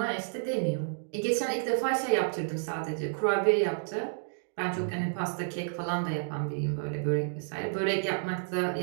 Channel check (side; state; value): left; silent; digital silence